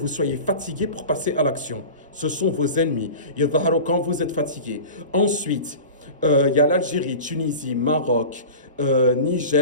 soyez fatigué pour passer à l'action. Ce sont vos ennemis. Quand vous êtes fatigué. Ensuite, il y a l'Algérie, Tunisie, Maroc,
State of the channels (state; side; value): inverted; both; correlation -0.35